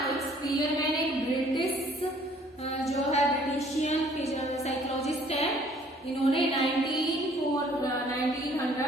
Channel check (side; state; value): both; normal; correlation 0.58